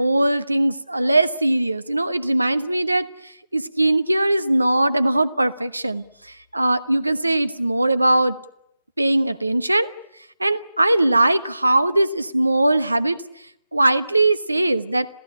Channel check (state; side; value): inverted; both; correlation -0.94